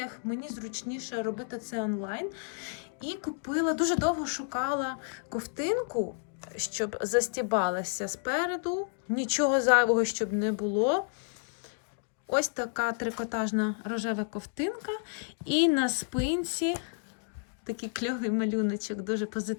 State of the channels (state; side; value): silent; right; 57 dB below the other